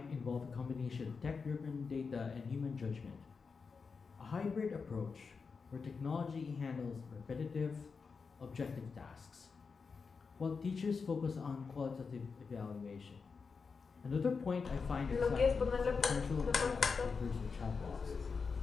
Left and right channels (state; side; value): quieter; right; 5.1 dB